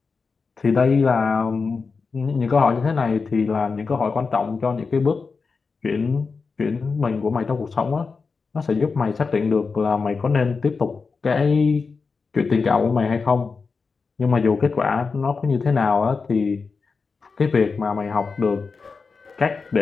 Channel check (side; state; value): right; quieter; 4.8 dB